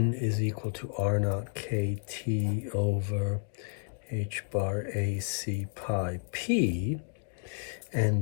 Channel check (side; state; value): right; silent; digital silence